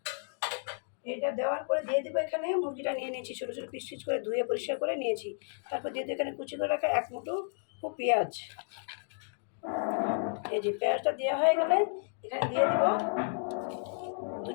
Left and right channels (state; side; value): silent; right; digital silence